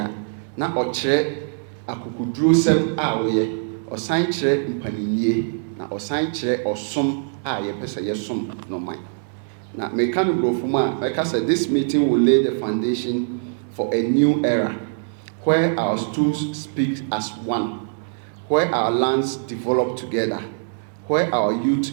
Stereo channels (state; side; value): silent; left; digital silence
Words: na ɔkyerɛ akokoduro sɛm a woyɛ ɔsan kyerɛ mpaninnie na ɔsan kyerɛ ɔsom a yɛpɛ sɛ yɛsom noman na meka no brɔfo mu a mɛka sɛ this meeting will lay the foundation for a new era where our stools speak as one, where our lands develop together, where our